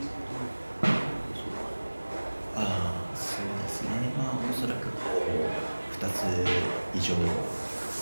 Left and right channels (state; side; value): inverted; both; correlation -1.00